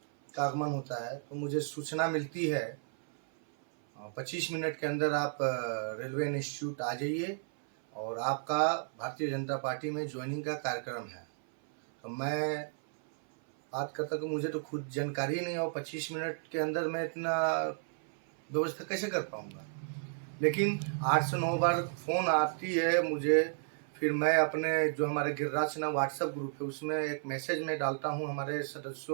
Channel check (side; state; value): left; silent; 56 dB below the other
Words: का आगमन होता है, तो मुझे सूचना मिलती है 25 मिनट के अंदर आप रेलवे इंस्टीट्यूट आ जाइए और आपका भारतीय जनता पार्टी में ज्वाइनिंग का कार्यक्रम है। तो मैं बात करता कि मुझे तो खुद जानकारी नहीं और 25 मिनट के अंदर मैं इतना व्यवस्था कैसे कर पाऊँगा। लेकिन 8 से 9 बार फ़ोन आती है मुझे, फिर मैं अपने जो हमारे गिरिराज सिन्हा व्हाट्सएप ग्रुप है उसमें एक मैसेज में डालता हूँ हमारे